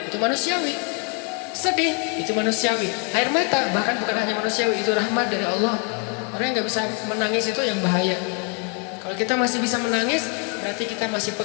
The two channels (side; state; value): right; quieter; 37.9 dB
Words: itu manusiawi. Sedih itu manusiawi. Air mata bahkan bukan hanya manusiawi, itu rahmat dari Allah. Orang yang nggak bisa menangis itu yang bahaya. Kalau kita masih bisa menangis, berarti kita masih